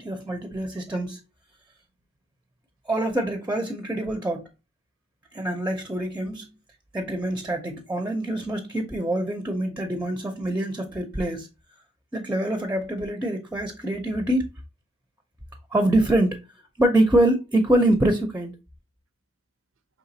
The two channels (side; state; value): both; normal; correlation 0.77